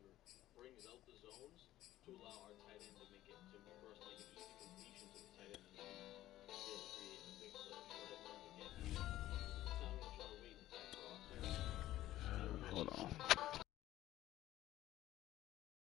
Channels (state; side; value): quieter; right; 14.5 dB